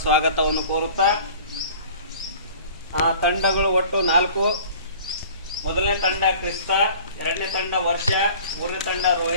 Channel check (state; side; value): inverted; both; correlation -0.46